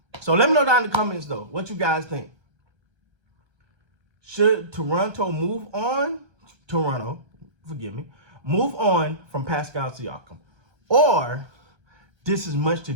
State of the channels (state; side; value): late; left; 1.3 ms